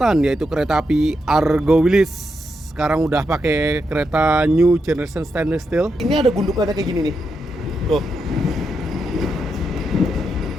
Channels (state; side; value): normal; both; correlation 0.84